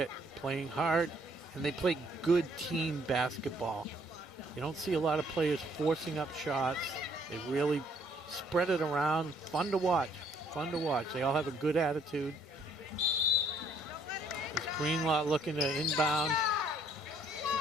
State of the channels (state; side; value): normal; both; correlation 0.64